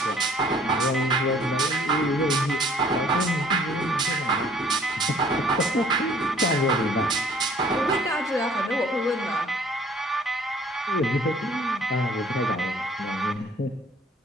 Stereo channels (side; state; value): both; normal; correlation 0.56